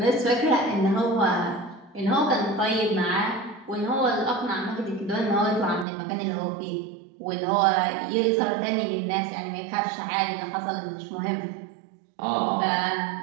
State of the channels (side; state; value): left; drops out; at 5.9 s